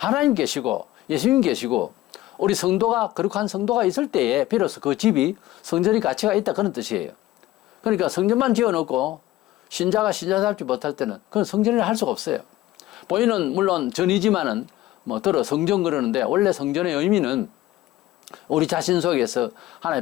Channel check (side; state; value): right; quieter; 16.0 dB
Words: 계시고 예수님 계시고 우리 성도가, 거룩한 성도가 있을 때에 비로소 그 집이 성전의 가치가 있다 그런 뜻이에요. 그러니까 성전만 지어놓고 신자가 신자답지 못할 때는 그건 성전이라 할 수가 없어요. 보이는 물론 전이지만은 뭐 들어 성전 그러는데, 원래 성전의 의미는 우리 자신 속에서